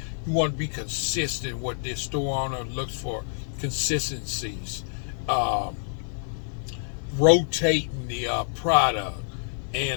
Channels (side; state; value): right; silent; digital silence